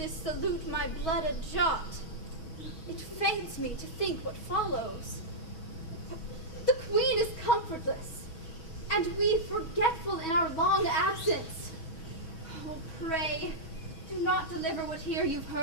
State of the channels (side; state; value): right; late; 6.2 ms